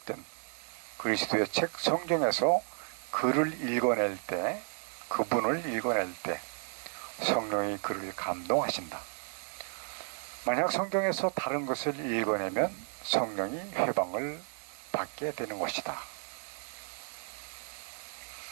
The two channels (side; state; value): left; silent; 56 dB below the other